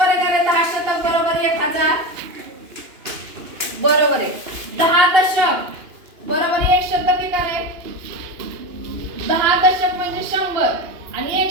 आहे का रे? 10 शतक बरोबर 1000. बरोबर आहे. 10 दशक बरोबर 1 शतक आहे का रे? 10 दशक म्हणजे 100 आणि 1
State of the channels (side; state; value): left; late; 2.9 ms